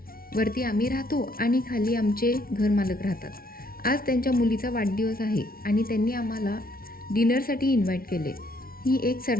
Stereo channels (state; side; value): late; right; 0.43 ms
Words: वरती आम्ही राहतो आणि खाली आमचे घरमालक राहतात. आज त्यांच्या मुलीचा वाढदिवस आहे आणि त्यांनी आम्हाला डिनरसाठी इन्व्हाइट केले. ही एक